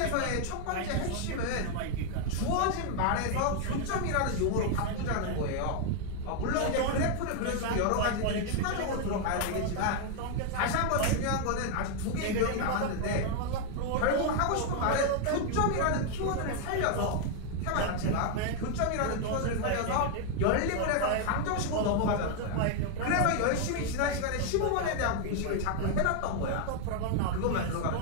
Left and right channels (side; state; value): both; different; correlation 0.00